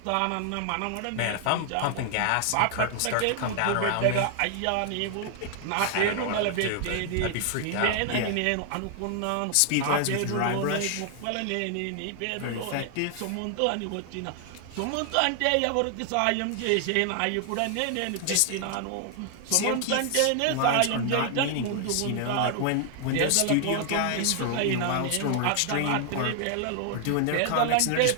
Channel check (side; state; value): both; different; correlation 0.00